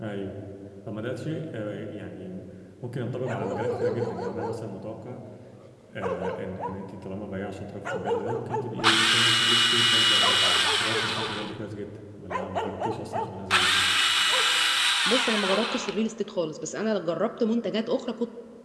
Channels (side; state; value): both; identical; correlation 1.00